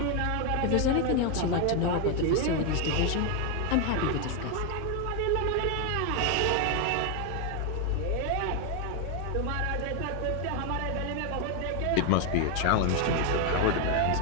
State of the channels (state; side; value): different; both; correlation 0.01